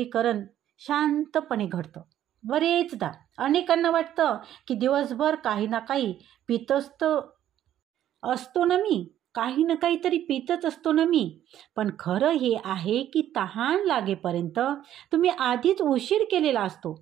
शांतपणे घडतं. बरेचदा अनेकांना वाटतं की दिवसभर काही ना काही पित असतो ना मी, काही ना काहीतरी पितच असतो ना मी. पण खरं हे आहे की तहान लागेपर्यंत तुम्ही आधीच उशीर केलेला असतो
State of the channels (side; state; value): left; quieter; 11.6 dB